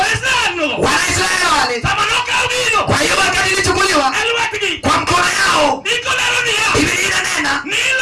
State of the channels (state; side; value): identical; both; correlation 1.00